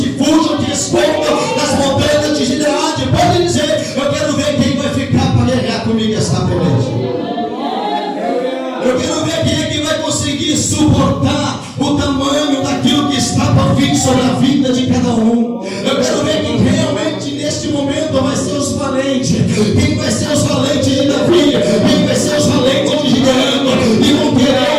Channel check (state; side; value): identical; both; correlation 1.00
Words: fujam, que escondam das montanhas de Gileade, pode dizer. Eu quero ver quem vai ficar para guerrear comigo esta peleja. Eu quero ver quem é que vai conseguir suportar o tamanho daquilo que está por vir sobre a vida de cada um. Eu quero ver quem realmente neste momento vai ser os valentes. Quem vai ser os valentes de Davi? Quem vai ser os valentes de Gideão? E vão querer